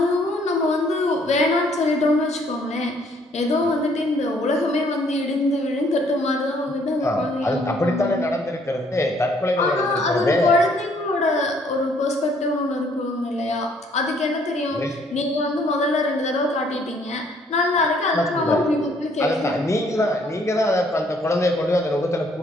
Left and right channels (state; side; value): normal; both; correlation 0.64